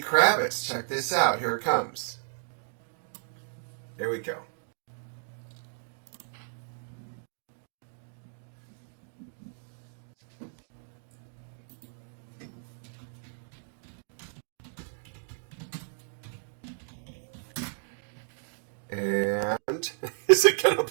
Kravitz. Check this out. Here it comes. Here we go. And is it going to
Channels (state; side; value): silent; left; digital silence